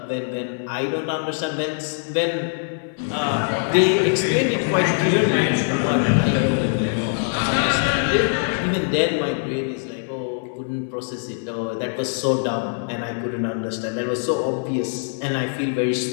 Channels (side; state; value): right; silent; digital silence